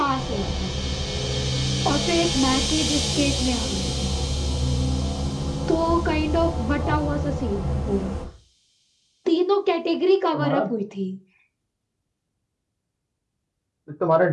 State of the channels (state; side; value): identical; both; correlation 1.00